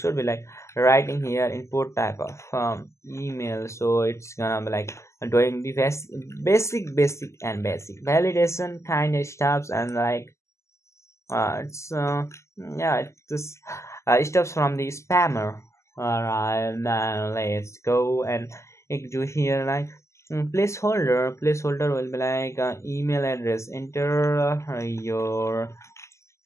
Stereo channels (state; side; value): late; right; 0.13 ms